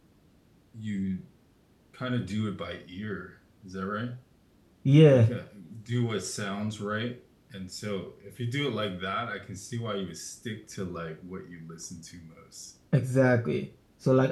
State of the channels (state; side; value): identical; both; correlation 1.00